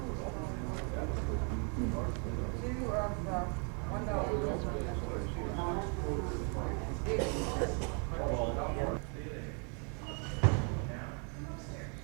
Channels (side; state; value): left; quieter; 38.3 dB